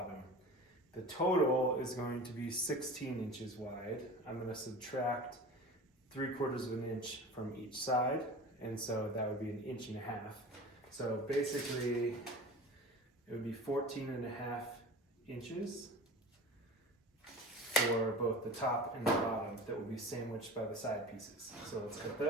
The total is going to be 16 inches wide. I'm gonna subtract 3/4 of an inch from each side, and so that would be 1.5 inches. So basically, it would be 14.5 inches for both the top and the bottom that will be sandwiched by the side pieces. So let's cut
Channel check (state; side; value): normal; both; correlation 0.36